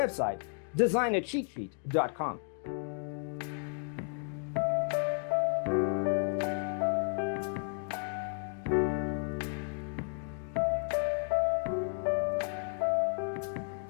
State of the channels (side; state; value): right; silent; 56 dB below the other